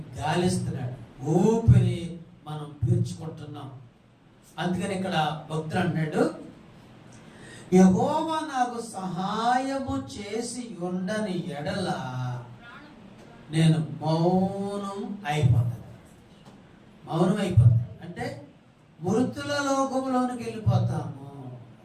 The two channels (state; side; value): identical; both; correlation 1.00